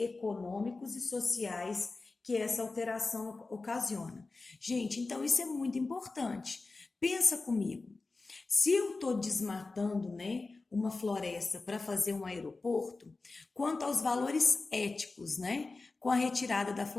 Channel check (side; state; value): right; quieter; 3.6 dB